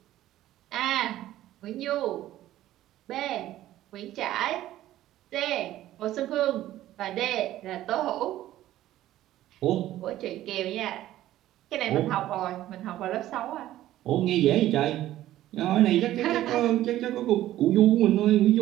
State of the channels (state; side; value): quieter; left; 14.0 dB